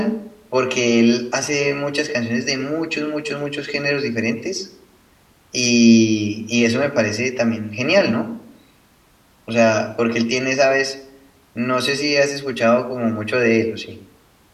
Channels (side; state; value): both; identical; correlation 1.00